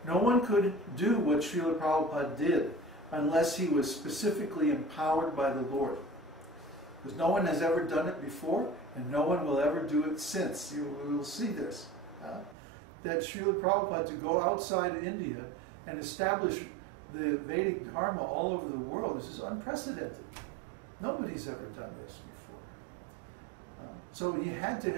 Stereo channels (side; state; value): left; drops out; at 12.6 s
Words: No one could do what Srila Prabhupada did unless he was specifically empowered by the Lord. Because no one has ever done it before, and no one will ever do it since. You will see this. That Srila Prabhupada, to go outside India and establish the Vedic Dharma all over the world, this is unprecedented. Nobody's ever done this before. So he had to